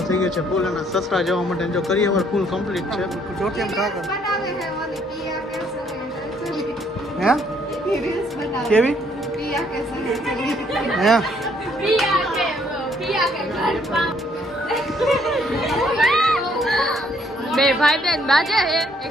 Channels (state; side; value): normal; both; correlation 0.66